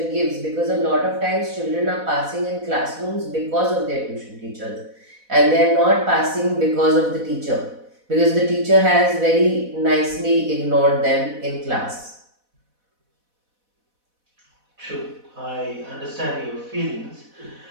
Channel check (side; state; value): left; late; 4.1 ms